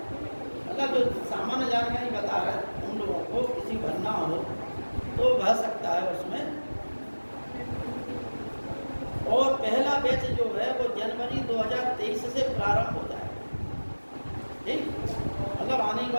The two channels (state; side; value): inverted; both; correlation -1.00